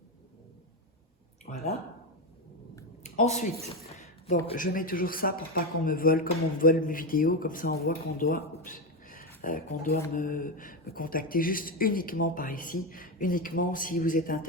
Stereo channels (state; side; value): normal; both; correlation 0.12